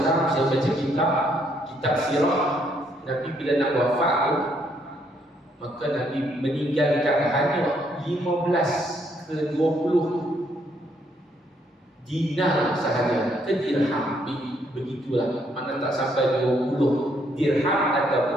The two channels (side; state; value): both; normal; correlation 0.71